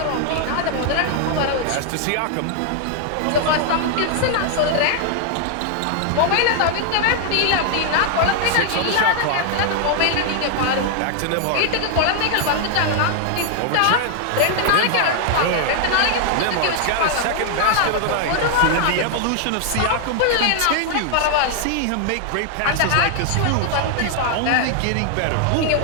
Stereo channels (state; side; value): different; both; correlation 0.00